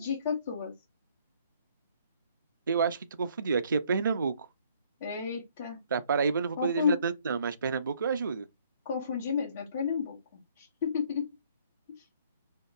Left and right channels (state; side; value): inverted; both; correlation -0.63